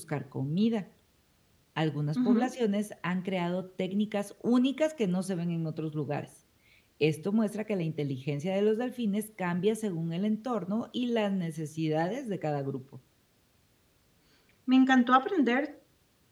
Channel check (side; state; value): both; identical; correlation 1.00